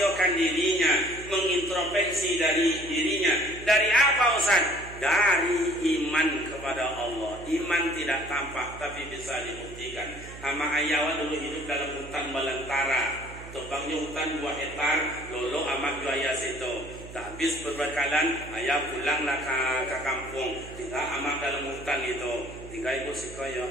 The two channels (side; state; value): right; noise; hum, 14 dB below the sound